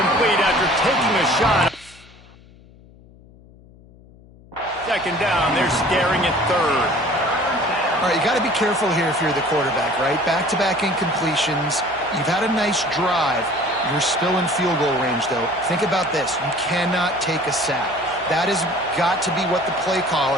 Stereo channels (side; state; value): left; noise; hum, 24 dB below the sound